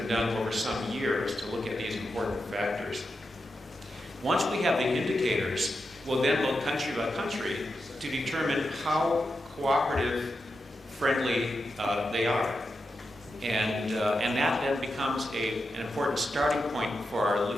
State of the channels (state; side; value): normal; both; correlation 0.88